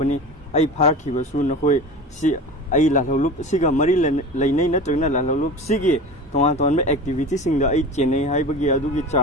I park he was soon Nakoi, see, I la loop, Siga Maryland, Lane, Trina, la loop, Sigi, Tomaton activities in the HNA, Hibagi, Adugi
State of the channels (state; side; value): normal; both; correlation 0.33